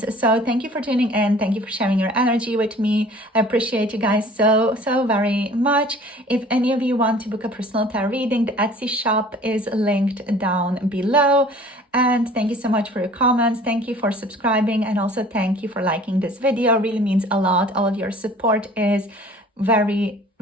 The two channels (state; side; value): normal; both; correlation 0.48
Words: So thank you for tuning in. Thank you for sharing your energy with me. I appreciate you guys so very much. If any of you want to book a personal tarot reading, the Etsy shop is linked down below. And thank you so much for your comments. Thank you for subscribing, and also thank you for liking this video. It really means a lot. All of your support is very